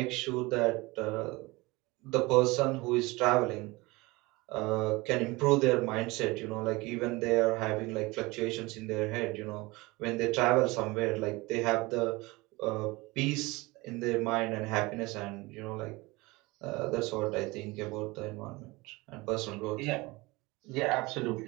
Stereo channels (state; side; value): quieter; left; 22.8 dB